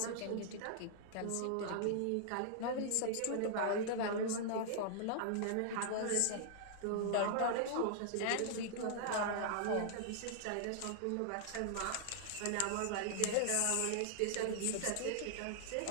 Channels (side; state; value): both; different; correlation -0.01